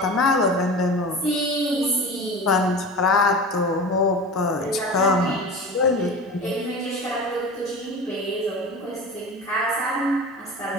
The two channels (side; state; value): both; normal; correlation 0.33